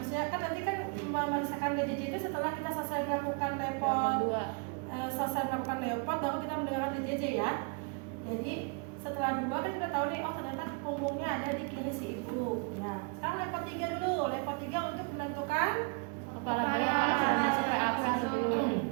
kan nanti kan memeriksakan DJJ itu setelah kita selesai melakukan repot, baru kita mendengarkan DJJ ya. Jadi setelah 2 kan kita tahu nih, oh ternyata punggungnya ada di kiri si ibu. Nah, sekarang repot 3 dulu. Repot 3 untuk menentukan Kepala bayi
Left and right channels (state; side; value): quieter; left; 33.4 dB